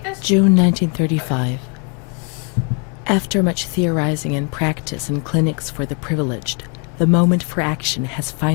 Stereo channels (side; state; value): right; quieter; 36.5 dB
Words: this? June 1935. After much theorizing and practice in clinics for the privileged, the moment for action has